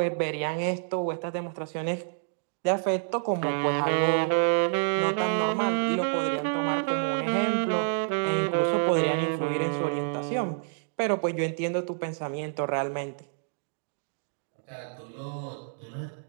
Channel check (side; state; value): left; silent; digital silence